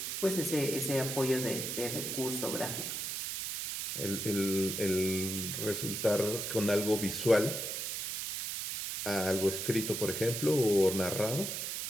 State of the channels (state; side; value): noise; right; hiss, 3 dB below the sound